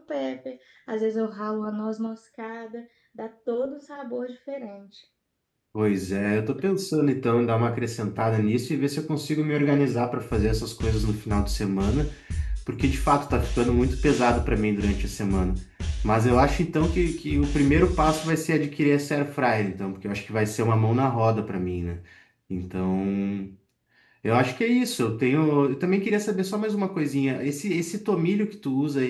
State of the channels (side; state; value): both; identical; correlation 1.00